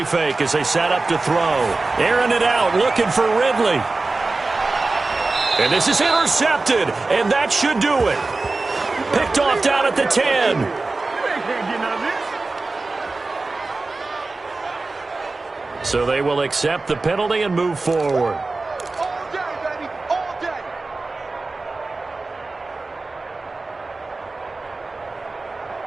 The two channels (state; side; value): quieter; left; 3.5 dB